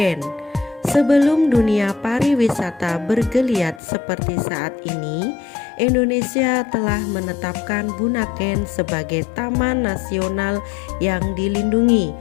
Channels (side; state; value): right; drops out; at 3.8 s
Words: Sebelum dunia pariwisata bergeliat seperti saat ini, Indonesia telah menetapkan Bunaken sebagai taman nasional yang dilindungi